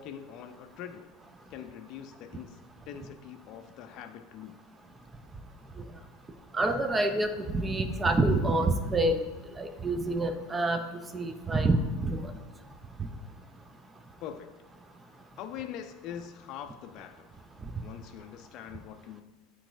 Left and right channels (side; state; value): both; normal; correlation 0.67